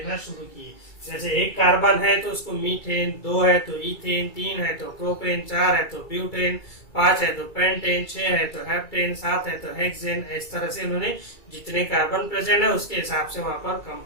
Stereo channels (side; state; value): right; late; 2.3 ms